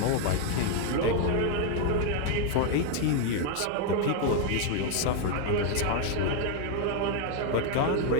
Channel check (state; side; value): different; both; correlation 0.00